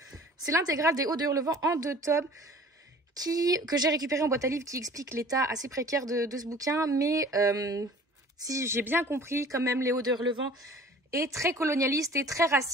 C'est l'intégrale des Hauts de Hurlevent en 2 tomes que j'ai récupéré en boîte à livres, qui explique l'état assez précaire de ce bouquin. Mais si j'ai bien compris, quand même, les Hauts de Hurlevent est très colonialiste et très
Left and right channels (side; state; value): both; normal; correlation 0.47